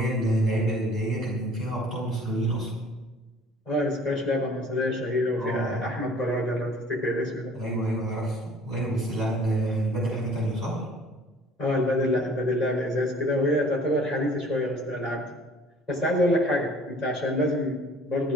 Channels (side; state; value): both; normal; correlation 0.52